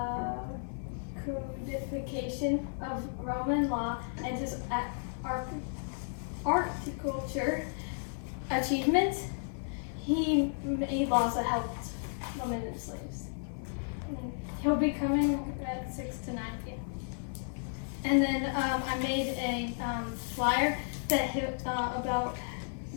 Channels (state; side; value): silent; right; 56 dB below the other